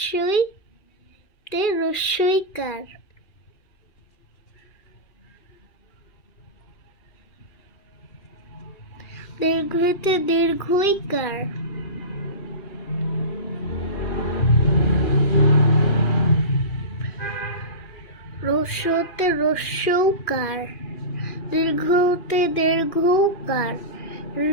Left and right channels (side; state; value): right; late; 2.4 ms